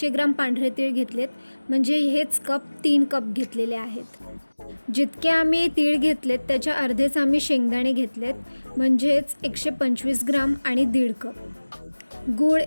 ग्राम पांढरे तीळ घेतलेत, म्हणजे हेच कप 3 कप घेतलेले आहेत. जितके आम्ही तीळ घेतलेत त्याच्या अर्धेच आम्ही शेंगदाणे घेतलेत, म्हणजेच 125 ग्राम आणि 1.5 कप. गूळ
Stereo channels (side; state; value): both; inverted; correlation -1.00